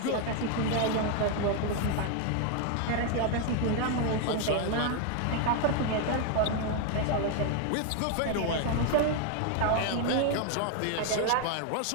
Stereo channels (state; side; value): different; both; correlation 0.00